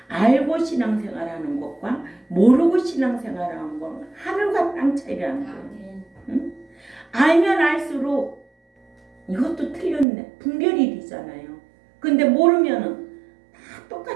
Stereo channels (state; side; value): drops out; left; at 10.1 s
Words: 알고 신앙생활하는 것과 모르고 신앙생활하는 건 하늘과 땅 차이라는 거예요. 응? 알면 알수록 이것도 틀렸네. 분별이 되잖아요. 근데 모르면은 다